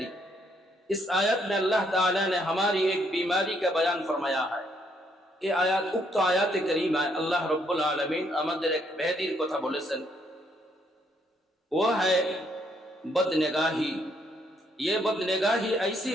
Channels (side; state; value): both; normal; correlation 0.71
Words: इस आयत में अल्लाह ताला ने हमारी एक बीमारी का बयान फरमाया है। ये आयत उक्त आयत करीमा अल्लाह रब्बुल आलमीन আমাদের এক ব্যাধির কথা বলেছেন, वो है बदनिगाही। ये बदनिगाही ऐसी